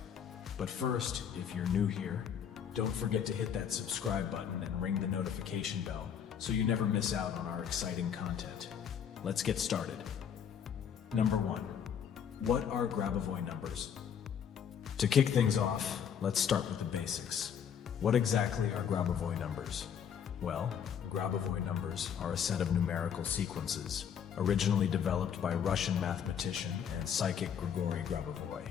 But first, if you're new here, don't forget to hit that subscribe button and ring the notification bell so you never miss out on our exciting content. Let's get started. Number 1. What are Grabovoi numbers? To kick things off, let's start with the basics. What exactly are Grabovoi numbers? Well, Grabovoi numbers are a set of numerical sequences, originally developed by Russian mathematician and psychic Grigori Grabovoi.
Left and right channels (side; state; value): right; quieter; 8.1 dB